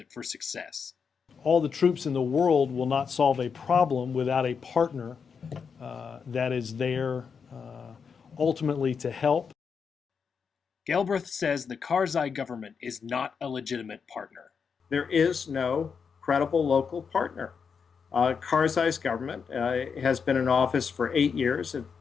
for success. All the troops in the world will not solve a problem without a partner that is there ultimately to help. Galbraith says the Karzai government is not a legitimate partner. There is no credible local partner. Karzai's government has been in office for 8 years.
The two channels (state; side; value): quieter; right; 6.1 dB